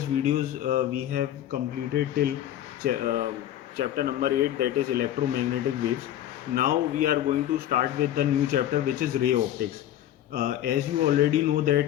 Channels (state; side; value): quieter; right; 12.1 dB